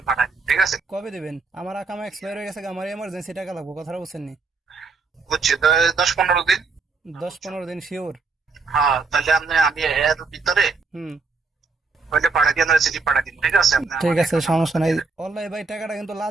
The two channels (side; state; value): left; quieter; 4.3 dB